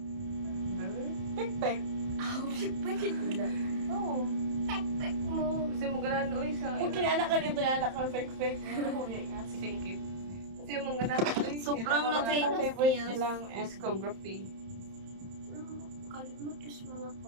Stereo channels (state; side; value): late; left; 31 ms